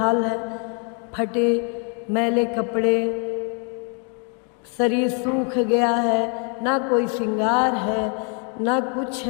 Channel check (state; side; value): quieter; right; 38.7 dB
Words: है, फटे मैले कपड़े, शरीर सूख गया है, ना कोई श्रृंगार है ना कुछ